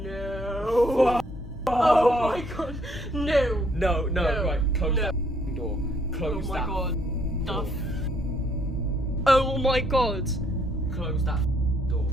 No. Oh my god. No. No, right. Close that door. Close that. Oh my god. Close that door.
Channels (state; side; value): normal; both; correlation 0.68